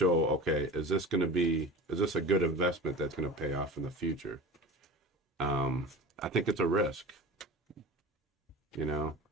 Okay, is this a good investment that's going to pay off in the future? I think it's a risk.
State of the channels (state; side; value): normal; both; correlation 0.34